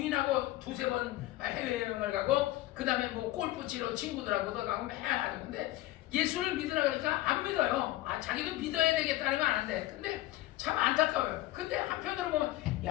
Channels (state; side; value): quieter; right; 16.5 dB